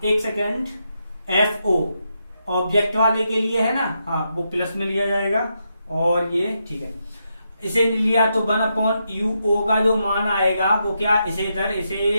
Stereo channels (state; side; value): inverted; both; correlation -0.82